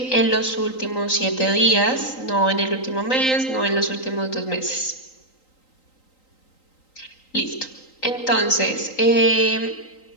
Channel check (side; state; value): right; late; 3.9 ms